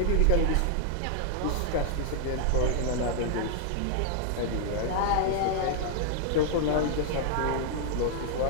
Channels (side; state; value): both; different; correlation 0.00